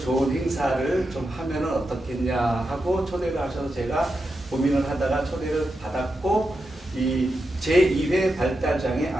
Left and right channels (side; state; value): both; normal; correlation 0.88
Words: 행사를 좀 하면은 어떻겠냐 하고 초대를 하셔서 제가 고민을 하다가 초대를 받았고 이 제2회 발달장애